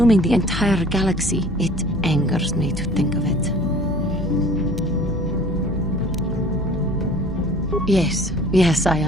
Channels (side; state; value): both; normal; correlation 0.48